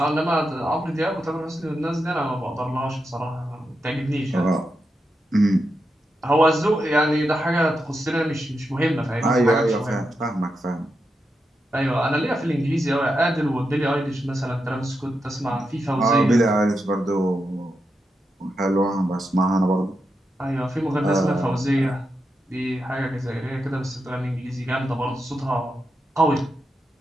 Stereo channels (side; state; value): both; normal; correlation 0.86